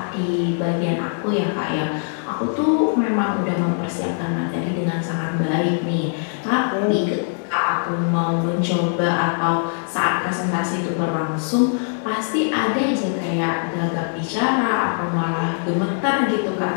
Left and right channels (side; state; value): right; silent; 63 dB below the other